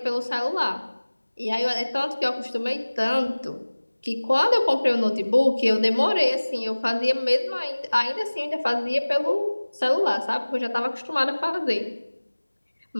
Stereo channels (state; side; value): inverted; both; correlation -1.00